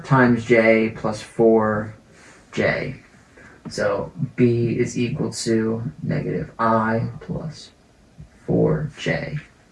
times j plus 4j. So b is equal to negative I plus 4j.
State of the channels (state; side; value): identical; both; correlation 1.00